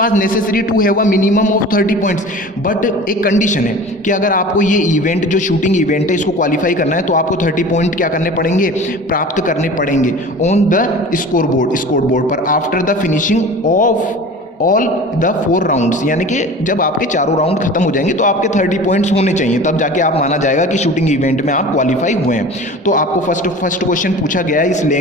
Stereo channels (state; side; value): normal; both; correlation 0.38